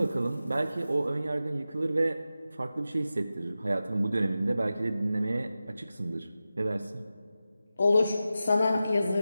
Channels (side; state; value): both; inverted; correlation -0.93